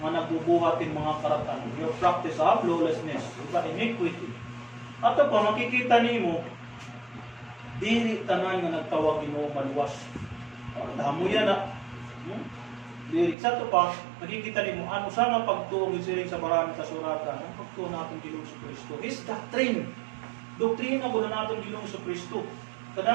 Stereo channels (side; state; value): left; drops out; at 13.4 s